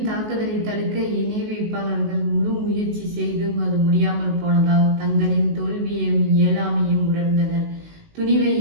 தாக்குதலை தடுக்க இணை வைப்பாளர்கள் முழு முயற்சி செய்தும் அது முடியாமல் போனதால் தங்களின் தோல்வியையும் இயலாமையும் உணர்ந்தனர். துணிவை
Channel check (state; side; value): late; left; 19 ms